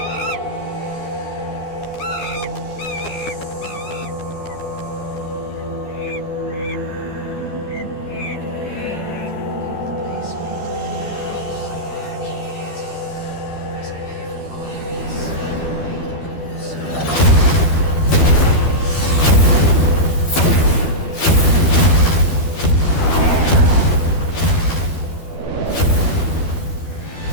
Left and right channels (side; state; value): right; late; 12 ms